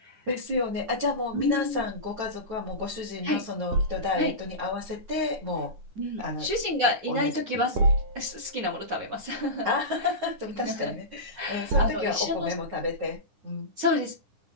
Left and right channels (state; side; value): late; left; 9.8 ms